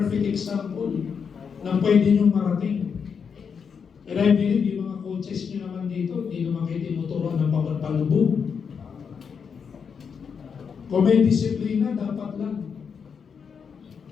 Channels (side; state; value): right; quieter; 6.4 dB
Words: example na pwede nyo marating. And I believe yung mga coaches nyo naman dito, hindi naman kayo tinuturuan ng pagpapalubog. Kung may disiplina, dapat lang.